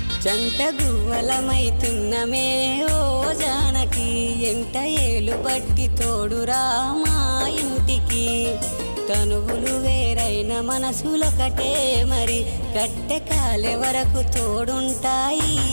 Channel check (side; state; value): both; inverted; correlation -1.00